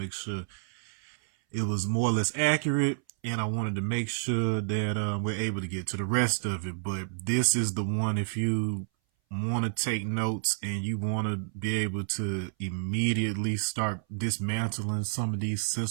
sure it was more or less accurate, and I wanted to make sure that we're able to get to the rest of it. But this is the one, if you want to take notes and you want to be able to immediately start dismantling some of these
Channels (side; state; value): left; silent; 58 dB below the other